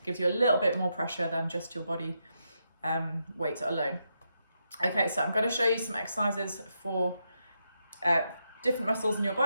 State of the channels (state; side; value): inverted; both; correlation -0.83